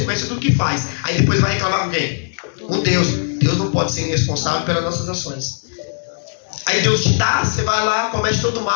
do que faz. Aí depois vai reclamar com quem? Com Deus. Deus não pode ser irresponsável pelas nossas ações. Aí Deus te dá, você vai lá, comete todo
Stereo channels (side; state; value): right; silent; digital silence